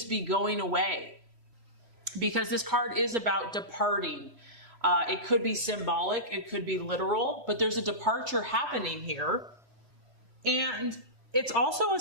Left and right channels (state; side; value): late; left; 3.0 ms